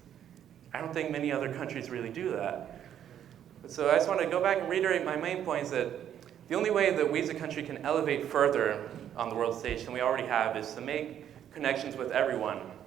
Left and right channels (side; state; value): left; quieter; 10.0 dB